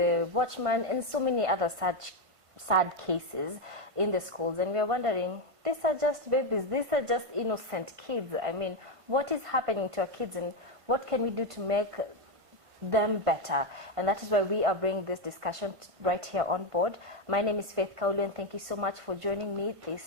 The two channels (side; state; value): left; late; 1.5 ms